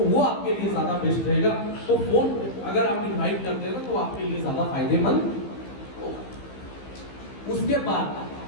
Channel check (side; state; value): right; late; 15 ms